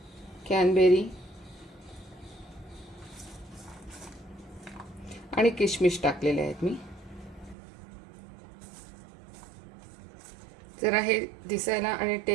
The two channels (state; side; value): drops out; left; at 7.6 s